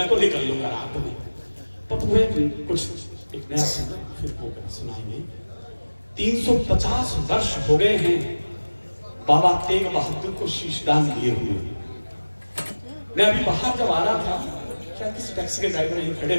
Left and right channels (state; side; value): inverted; both; correlation -1.00